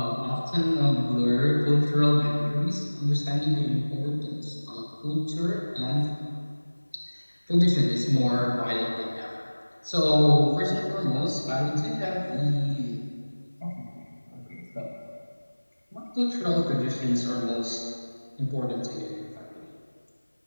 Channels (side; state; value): both; inverted; correlation -1.00